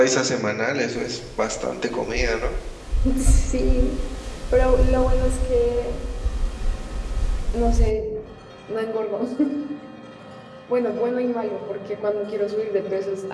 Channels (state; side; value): identical; both; correlation 1.00